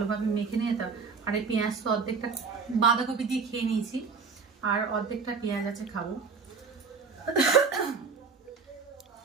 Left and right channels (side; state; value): left; quieter; 5.1 dB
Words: মেখে নিয়ে। আর এই পেঁয়াজ তো অর্ধেকটা বাঁধাকপি দিয়ে খেয়ে নিয়েছি, আর অর্ধেকটা পেঁয়াজ আছে খাবো।